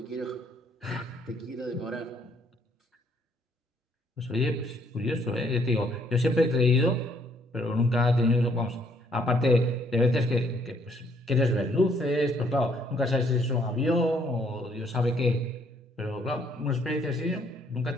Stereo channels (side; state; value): both; normal; correlation 0.66